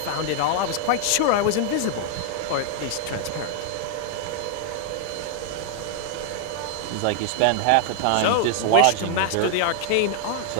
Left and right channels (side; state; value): both; different; correlation 0.00